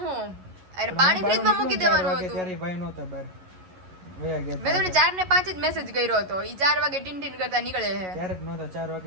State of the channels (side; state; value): left; late; 11 ms